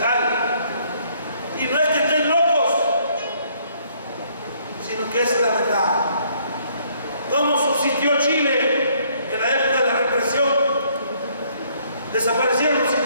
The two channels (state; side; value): inverted; both; correlation -0.65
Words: Y no es que estén locos, sino que es la verdad. ¿Cómo subsistió Chile en la época de la represión? Desaparecieron los